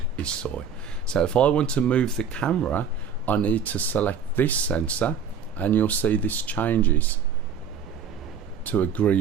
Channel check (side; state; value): left; quieter; 6.8 dB